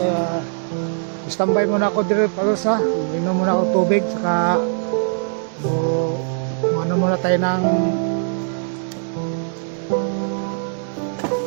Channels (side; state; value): left; silent; digital silence